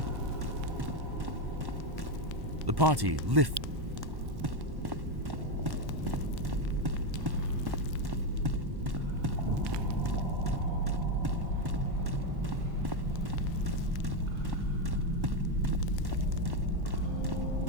the party lift.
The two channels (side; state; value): left; late; 1.1 ms